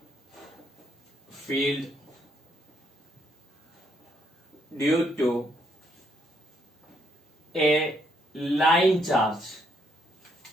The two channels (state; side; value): normal; both; correlation 0.73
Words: field due to a line charge?